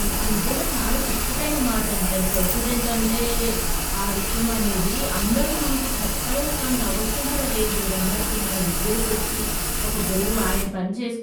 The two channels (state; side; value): identical; both; correlation 1.00